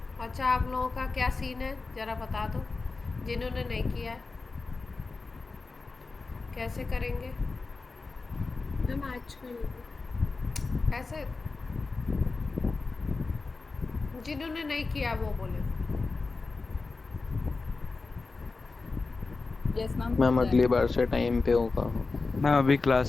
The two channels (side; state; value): right; quieter; 3.9 dB